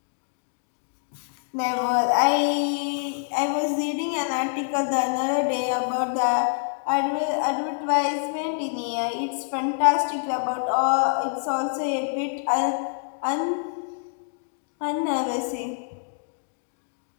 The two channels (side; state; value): right; silent; digital silence